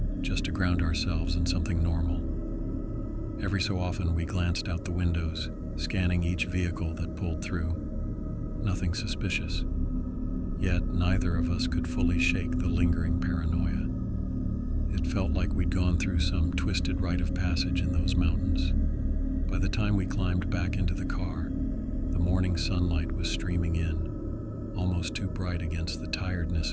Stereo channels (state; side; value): identical; both; correlation 1.00